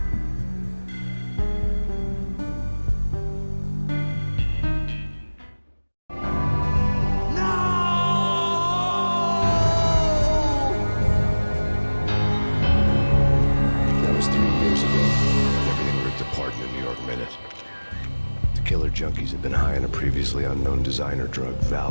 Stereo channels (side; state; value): both; inverted; correlation -1.00